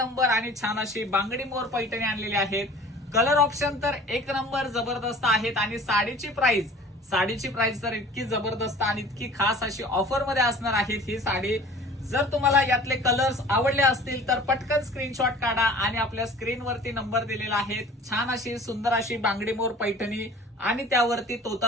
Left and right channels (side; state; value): both; normal; correlation 0.45